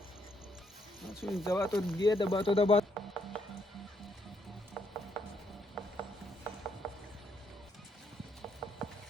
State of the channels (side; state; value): both; normal; correlation 0.73